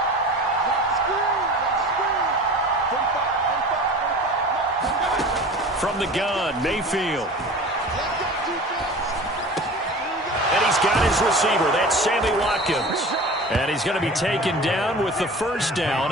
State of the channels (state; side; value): normal; both; correlation 0.38